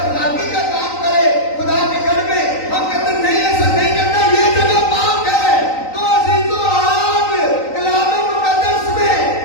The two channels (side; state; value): right; late; 3.9 ms